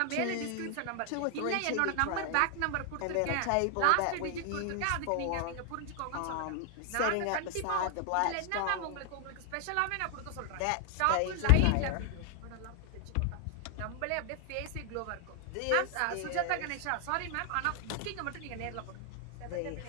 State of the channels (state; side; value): different; both; correlation 0.00